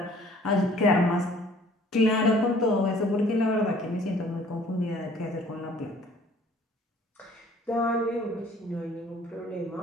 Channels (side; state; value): both; normal; correlation 0.55